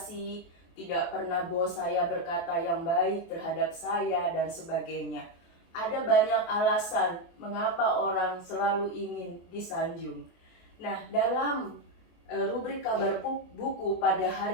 tidak pernah bos saya berkata yang baik terhadap saya dan sebagainya. Ada banyak alasan mengapa orang selalu ingin disanjung. Nah, dalam rubrik kabar buku pada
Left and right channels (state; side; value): late; right; 23 ms